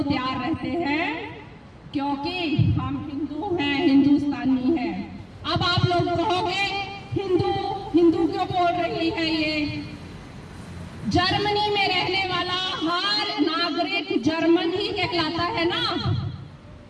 तैयार रहते हैं, क्योंकि हम हिंदू हैं, हिंदुस्तानी हैं। अब आप लोग कहोगे हिंदू हिंदू क्यों बोल रही है ये? जर्मनी में रहने वाला हर नागरिक जर्मन ही कहलाता है ना।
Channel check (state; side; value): identical; both; correlation 1.00